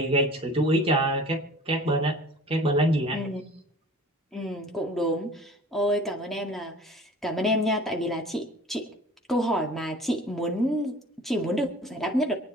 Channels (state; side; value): normal; both; correlation 0.45